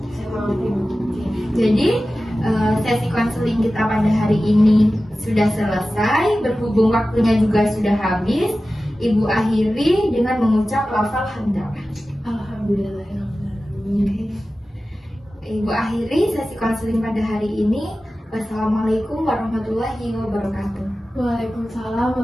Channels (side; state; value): both; normal; correlation 0.95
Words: saya mengerti Bu. Jadi sesi konseling kita pada hari ini sudah selesai, berhubung waktunya juga sudah habis. Ibu akhiri dengan mengucap lafal hamdalah. Alhamdulillahirrahmanirrahim. Ibu akhiri sesi konseling pada hari ini. Wassalamualaikum warahmatullahi wabarakatuh. Waalaikumsalam